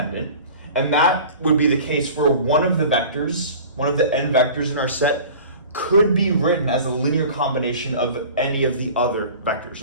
and that would be the case where one of the vectors, one of the n vectors in our set, could be written as a linear combination of any of the other vectors.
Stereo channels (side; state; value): both; inverted; correlation -0.41